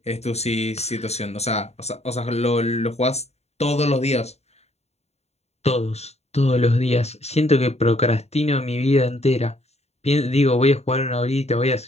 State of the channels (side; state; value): right; late; 0.31 ms